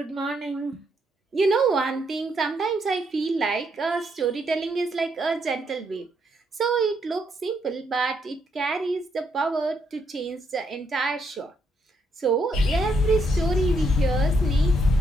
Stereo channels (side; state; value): both; normal; correlation 0.75